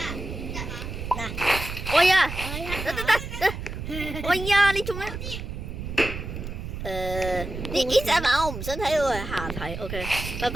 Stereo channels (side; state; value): right; noise; rumble, 7 dB below the sound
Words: 嗱，喂呀，得。喂呀，你做咩？呢隻馬我唔想睇，我係下睇。OK， 拜